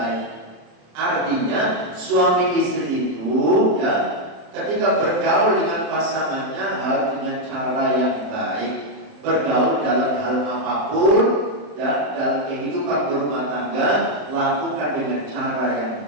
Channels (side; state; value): left; late; 27 ms